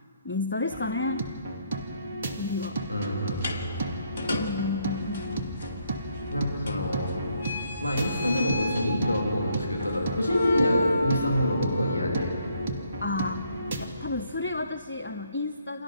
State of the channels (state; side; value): inverted; both; correlation -0.70